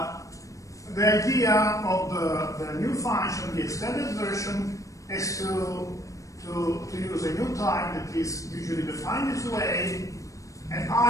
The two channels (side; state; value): right; late; 0.16 ms